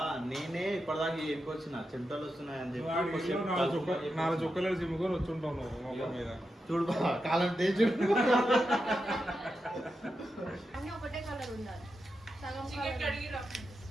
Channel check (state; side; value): normal; both; correlation 0.88